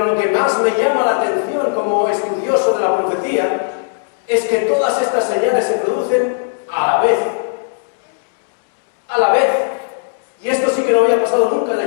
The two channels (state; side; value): silent; right; digital silence